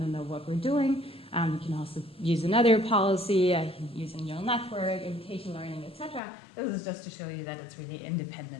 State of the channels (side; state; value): right; drops out; at 6.2 s